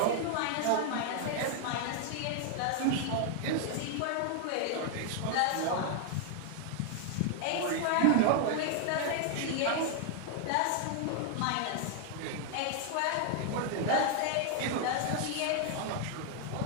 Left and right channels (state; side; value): different; both; correlation 0.00